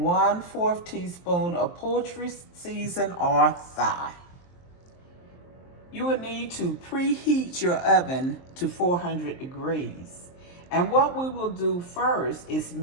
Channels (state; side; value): late; right; 23 ms